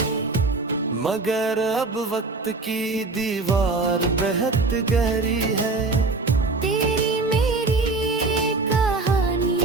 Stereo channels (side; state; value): left; quieter; 3.6 dB